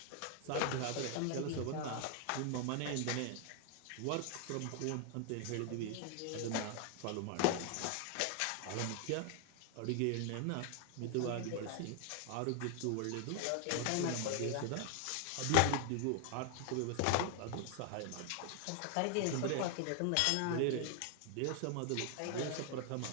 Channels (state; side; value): different; both; correlation 0.00